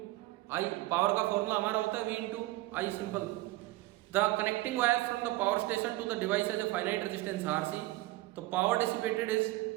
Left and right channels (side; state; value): left; quieter; 18.4 dB